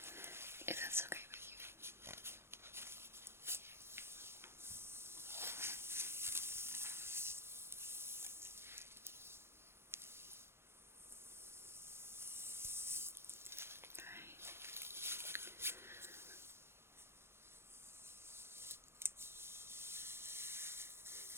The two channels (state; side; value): late; left; 0.12 ms